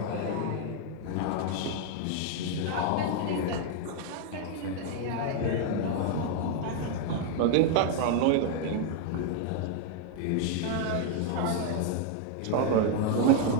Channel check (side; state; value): both; different; correlation 0.00